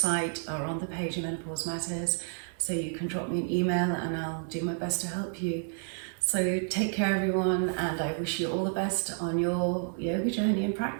are on the page of Menopause Matters, so you can drop me an email and I'll do my best to help you. So take care everyone, and I wish you all the best on your yoga journey and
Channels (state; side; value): silent; left; 57 dB below the other